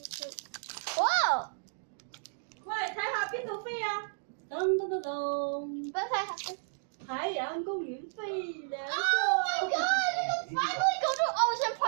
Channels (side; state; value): left; silent; digital silence